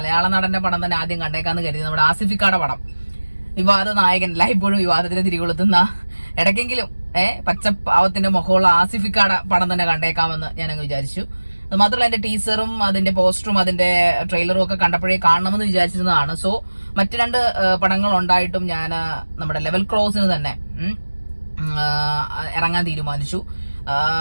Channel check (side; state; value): both; inverted; correlation -1.00